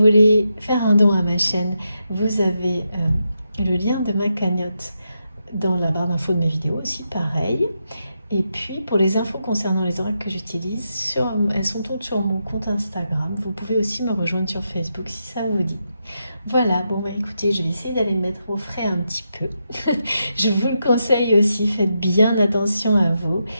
faire un don à ma chaîne, vous avez le lien de ma cagnotte dans la barre d'infos de mes vidéos aussi, pareil. Et puis pour les infos concernant les oracles que j'utilise, elles sont toutes sur mon compte Instagram. Vous pouvez aussi me rejoindre sur Facebook si ça vous dit. Voilà, bon écoutez, je vais essayer d'aller me mettre au frais un petit peu. Je vous le conseille aussi, faites bien attention à vous.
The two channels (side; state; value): both; inverted; correlation -0.84